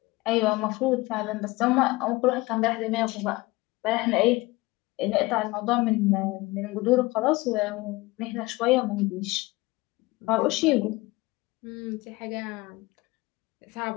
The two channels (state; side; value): quieter; right; 21.4 dB